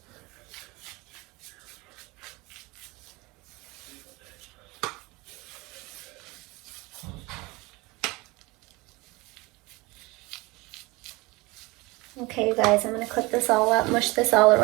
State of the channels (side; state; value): left; quieter; 23.5 dB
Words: Okay, you guys, I'm gonna clip this all up, mush this all